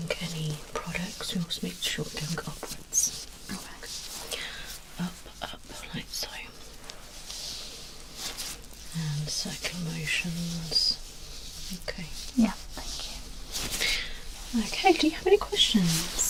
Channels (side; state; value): both; identical; correlation 1.00